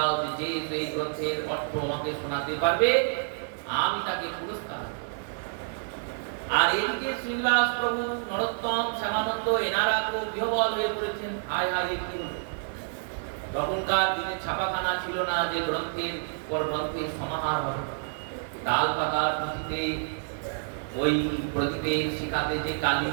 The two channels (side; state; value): left; silent; 58 dB below the other